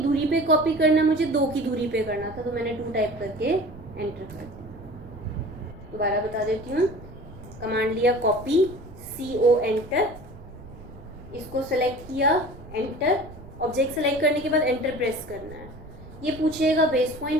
पे कॉपी करना है, मुझे 2 की दूरी पे करना था, तो मैंने 2 टाइप करके एंटर कर दिया। दोबारा बता देती हूँ, कमांड लिया कॉपी, CO एंटर, इसको सेलेक्ट किया, एंटर, ऑब्जेक्ट सेलेक्ट करने के बाद एंटर प्रेस करना है। ये पूछेगा बेस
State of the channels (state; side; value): noise; right; rumble, 17 dB below the sound